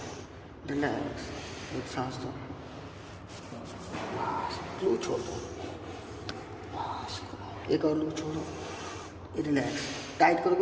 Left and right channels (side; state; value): both; identical; correlation 1.00